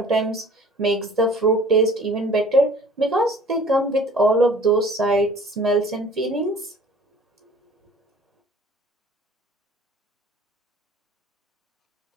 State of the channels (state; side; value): normal; both; correlation 0.49